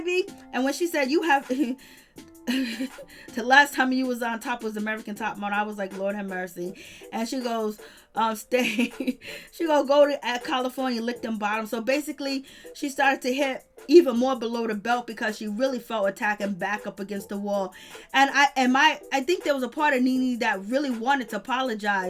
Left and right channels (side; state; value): both; identical; correlation 1.00